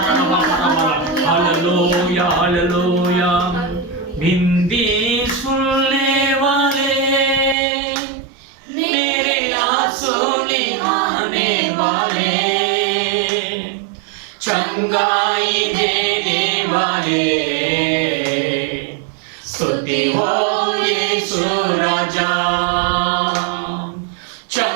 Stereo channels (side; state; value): left; drops out; at 7.6 s